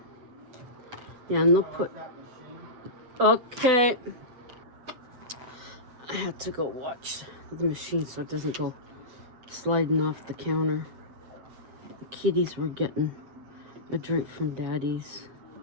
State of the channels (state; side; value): late; left; 7.9 ms